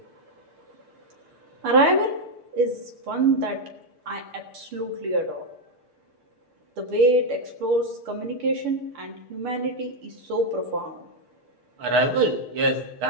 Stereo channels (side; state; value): left; late; 6.7 ms